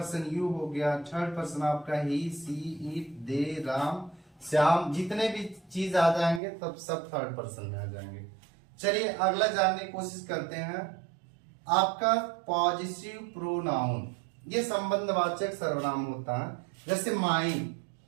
यू हो गया, थर्ड पर्सन आपका ही, सी, इट, दे, राम, श्याम, जितने भी चीज आ जाएंगे तब सब थर्ड पर्सन में आ जाएंगे। चलिए अगला जानने की कोशिश करते हैं। आपका पॉजिटिव प्रोनाउन, ये संबंधवाचक सर्वनाम होता है। जैसे mine,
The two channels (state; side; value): drops out; left; at 6.4 s